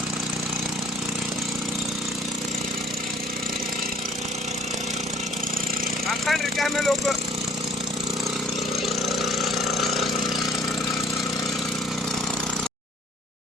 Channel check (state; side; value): normal; both; correlation 0.56